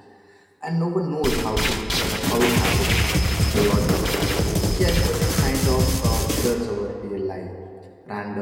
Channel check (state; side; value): identical; both; correlation 1.00